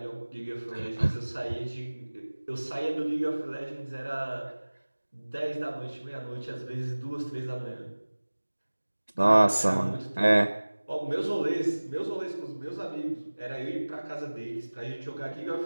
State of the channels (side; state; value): both; inverted; correlation -1.00